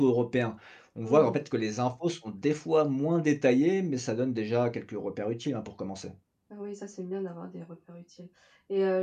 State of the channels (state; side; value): identical; both; correlation 1.00